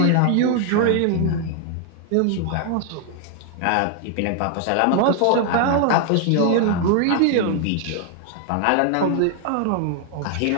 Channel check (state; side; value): different; both; correlation 0.00